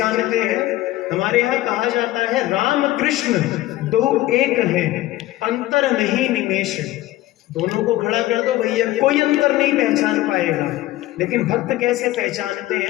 हैं? हमारे यहाँ कहा जाता है राम कृष्ण दो एक हैं, अंतर नहीं निमेष। दोनों को खड़ा कर दो भैया, कोई अंतर नहीं पहचान पाएगा। लेकिन भक्त कैसे पहचानते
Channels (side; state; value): right; quieter; 16.3 dB